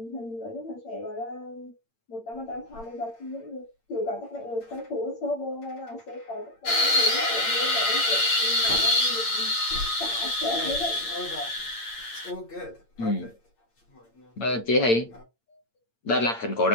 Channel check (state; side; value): late; right; 8.8 ms